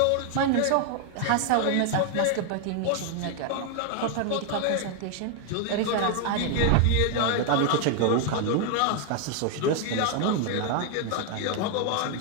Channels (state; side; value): different; both; correlation 0.00